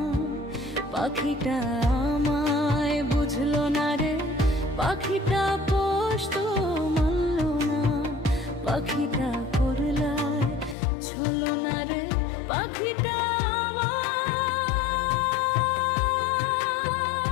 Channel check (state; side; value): drops out; right; at 10.8 s